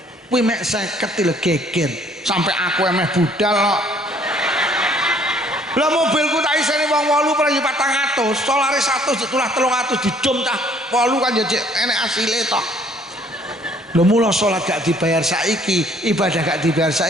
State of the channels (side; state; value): both; normal; correlation 0.60